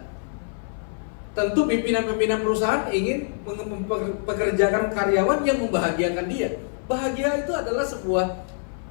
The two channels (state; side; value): silent; right; 56 dB below the other